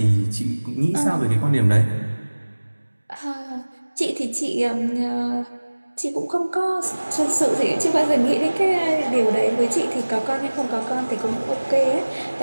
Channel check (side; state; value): both; inverted; correlation -1.00